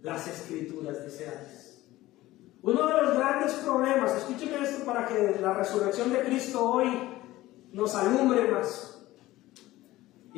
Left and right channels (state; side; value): quieter; right; 17.0 dB